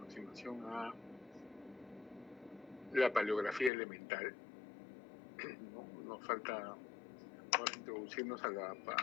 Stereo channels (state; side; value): drops out; right; at 3.7 s